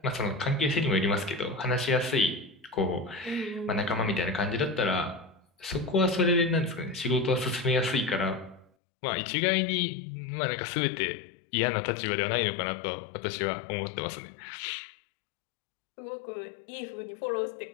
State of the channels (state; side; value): drops out; right; at 8.7 s